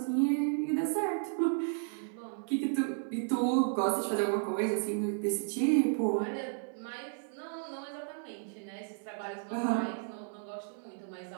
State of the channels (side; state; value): left; silent; 56 dB below the other